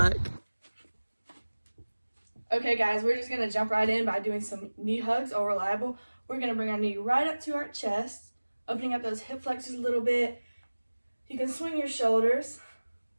Okay guys, we're just gonna jump right in by doing some knee hugs or reliable. We're gonna bring our knee right up to our chest, opening up those hip flexors a little bit. You can swing your shoulders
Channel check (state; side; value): inverted; both; correlation -1.00